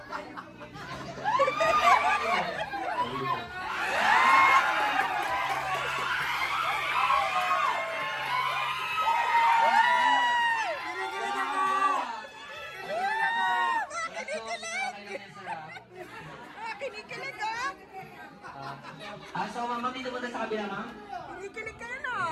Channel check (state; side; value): identical; both; correlation 1.00